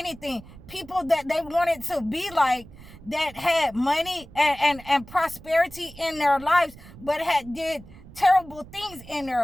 People that they wanted to be like, that had money and prosperity in their lives, but had did terrible things in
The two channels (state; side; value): noise; right; rumble, 19 dB below the sound